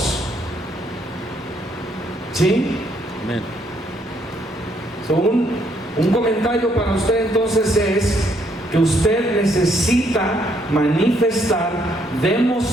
¿Sí? Amén. So, un comentario para usted entonces es que usted necesita manifestar,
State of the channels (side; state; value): both; normal; correlation 0.71